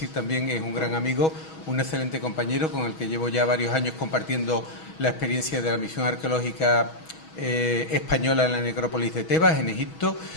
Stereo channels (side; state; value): right; late; 6.2 ms